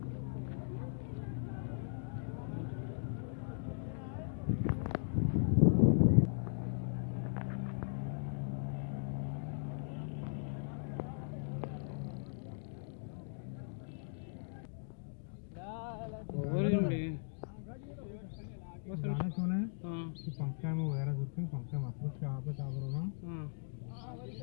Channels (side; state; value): right; silent; digital silence